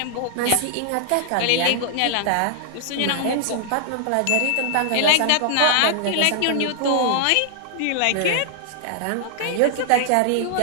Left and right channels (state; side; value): different; both; correlation -0.01